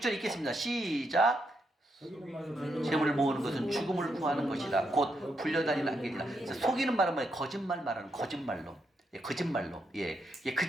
읽겠습니다. 시작. 재물을 모으는 것은 죽음을 구하는 것이다. 곧 불려다니는 안개니라. 속이는 말은 뭐예요? 거짓말 말하는 거짓말로. 예, 거짓말로. 예,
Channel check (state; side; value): normal; both; correlation 0.80